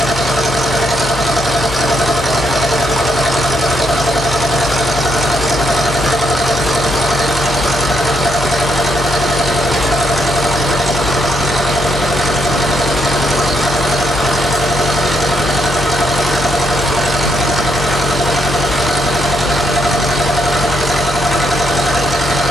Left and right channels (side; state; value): both; normal; correlation 0.76